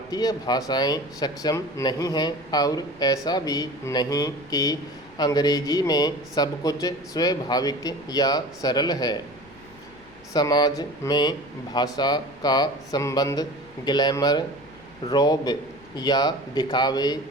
भाषाएं सक्षम नहीं हैं और ऐसा भी नहीं कि अंग्रेजी में सब कुछ स्वाभाविक या सरल है। समाज में भाषा का संबंध ग्लैमर, रौब या दिखावे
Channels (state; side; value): noise; left; rumble, 26 dB below the sound